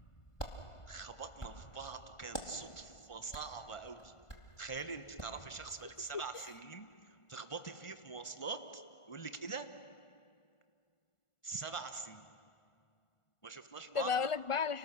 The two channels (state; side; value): late; right; 1.5 ms